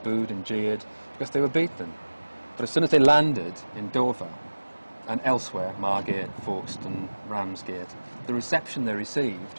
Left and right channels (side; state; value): both; inverted; correlation -1.00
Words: and jeered because they were beaten. But as soon as they landed in Dover and elsewhere, Margate, Folkestone, Ramsgate, the reception they received